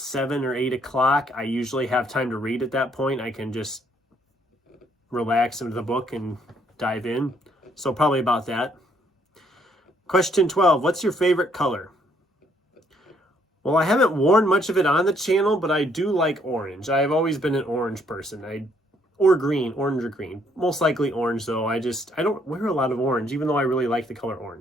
or 8 o'clock. I usually have time to read at that point. I can just relax into the book and dive in. So probably about that. Question 12, what's your favorite color? Well, I haven't worn much of it on the channel, but I do like orange. I've always been an orange person. Or green, orange or green. Most likely orange though. I don't wear a lot of orange, even though I really like the color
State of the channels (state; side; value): normal; both; correlation 0.68